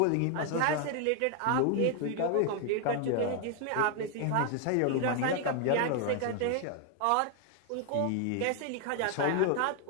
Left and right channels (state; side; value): different; both; correlation 0.01